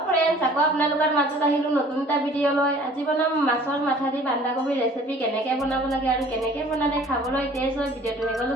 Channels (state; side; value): normal; both; correlation 0.51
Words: friends, आको आपनालोকৰ মাজত আহিলো নতুন এটা ভিডিও লৈ। আজি বনাম মাছৰ মাথা দি বান্ধাকবি ৰেচিপি। কেনেকৈ বনাব লাগে আৰু কেনেকৈ বনালে খাবলৈ টেষ্ট হয় ভিডিওটো